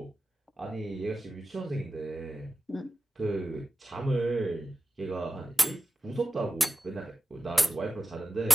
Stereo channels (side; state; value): both; normal; correlation 0.94